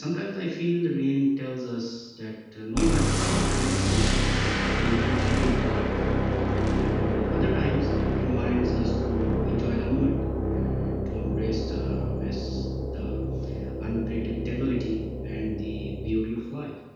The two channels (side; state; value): both; identical; correlation 1.00